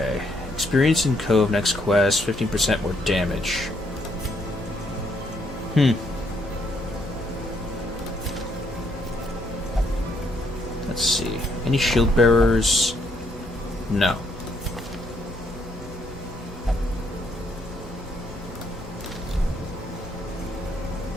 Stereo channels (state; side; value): normal; both; correlation 0.72